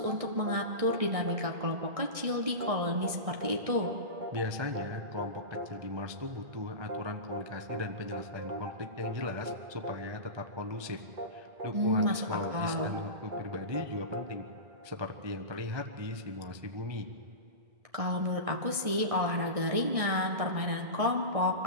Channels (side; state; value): left; late; 1.6 ms